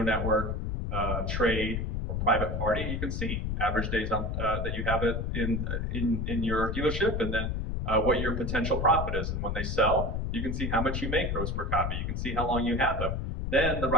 network, trade, or private party. You can see average days on, that you have it in your dealership, and then what your potential profit is. And when they sell, you can see how much you make gross per copy. You can see how long you have them. Then the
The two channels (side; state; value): left; noise; rumble, 1 dB below the sound